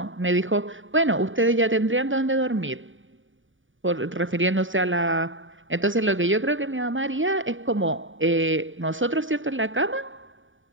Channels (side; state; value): left; late; 0.57 ms